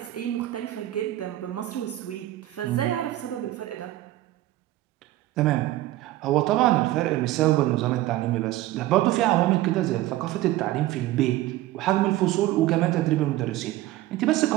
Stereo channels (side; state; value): left; quieter; 15.7 dB